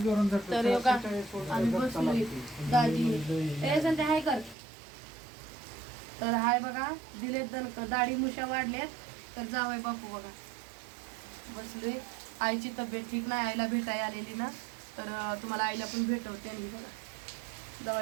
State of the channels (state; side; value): drops out; left; at 4.5 s